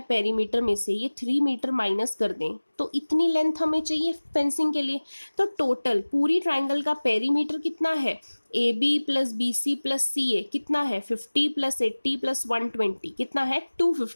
पेरीमीटर में से ये 3 मीटर माइनस कर दें तो इतनी लेंथ हमें चाहिए फेंसिंग के लिए। तो टोटल पूरी ट्राइंगल का पेरीमीटर कितना है, a b plus b c plus c a कितना है 50 प्लस 80 प्लस 120 कितना है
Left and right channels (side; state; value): both; inverted; correlation -1.00